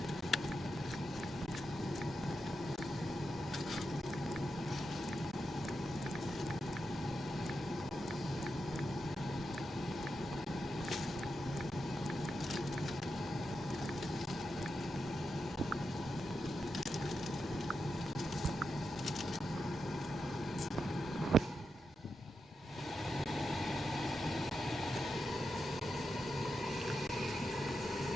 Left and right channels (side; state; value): both; normal; correlation 0.87